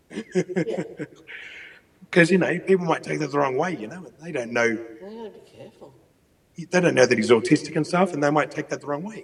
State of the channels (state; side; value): identical; both; correlation 1.00